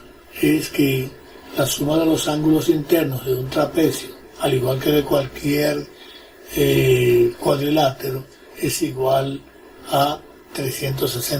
es que la suma de los ángulos internos de un trapecio, al igual que de cualquier cuadrilátero, es igual a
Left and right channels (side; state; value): both; identical; correlation 1.00